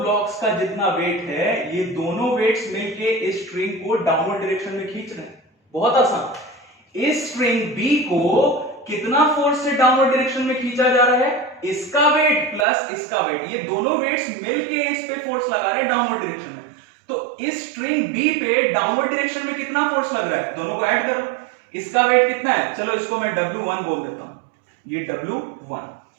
का जितना वेट है, ये दोनों वेट्स मिलके इस स्ट्रिंग को डाउनवर्ड डायरेक्शन में खींच रहे हैं। बहुत आसान। इस स्ट्रिंग बी को कितना फोर्स से डाउनवर्ड डायरेक्शन में खींचा जा रहा है, इसका वेट प्लस इसका वेट, ये दोनों वेट्स मिलके इस पे फोर्स लगा रहे हैं डाउनवर्ड डायरेक्शन में। तो इस स्ट्रिंग बी पे डाउनवर्ड डायरेक्शन में कितना फोर्स लग रहा है, दोनों को ऐड कर लो। इसका वेट कितना है, चलो इसको मैं W1 बोल देता हूं, ये W1,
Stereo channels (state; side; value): drops out; left; at 12.7 s